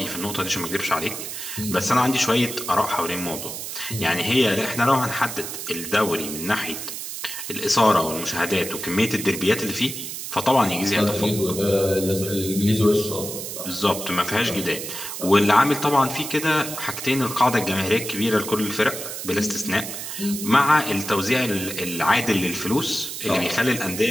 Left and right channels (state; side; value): noise; right; hiss, 7 dB below the sound